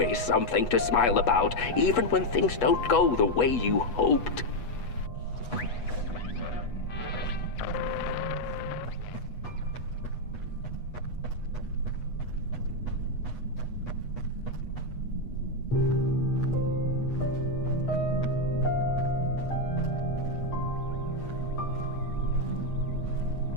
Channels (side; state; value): right; late; 8.2 ms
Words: something to smile about, even when things don't go the way you hoped.